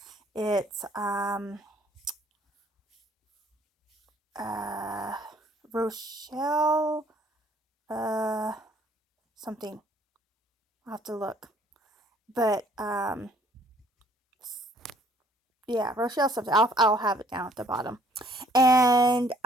It's Rochelle something. I'll have to look. But yeah, Rochelle something. I'll have it down at the bottom. And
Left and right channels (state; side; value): normal; both; correlation 0.61